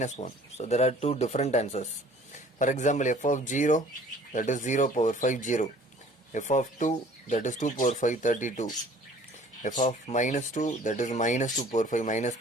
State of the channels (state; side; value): normal; both; correlation 0.52